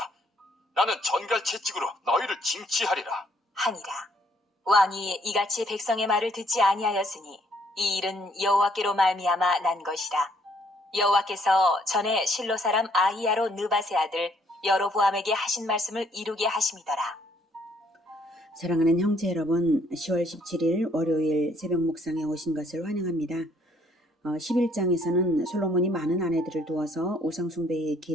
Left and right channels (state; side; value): normal; both; correlation 0.66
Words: 나는 전갈 채찍으로 너희를 징치하리라. 하니라. 왕이 이같이 백성의 말을 듣지 아니하였으니 이 일은 여호와께로 말미암아 난 것이라. 여호와께서 전에 실로 사람 아히야로 느밧의 아들 여로보암에게 하신 말씀을 이루게 하심이더라. 사랑하는 형제 여러분, 10월 17일 월요일 새벽 묵상에 오신 것을 환영합니다. 11장에서는 솔로몬이 많은 아내들을 두어서 우상숭배의